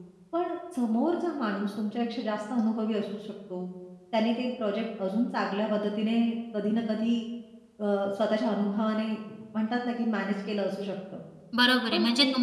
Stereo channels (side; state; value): both; identical; correlation 1.00